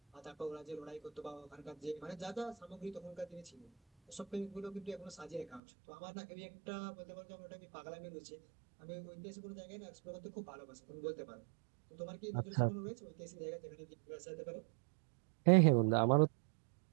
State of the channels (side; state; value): left; drops out; at 5.6 s